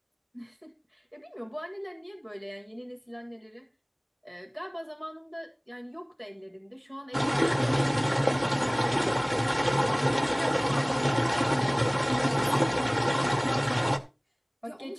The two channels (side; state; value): both; identical; correlation 1.00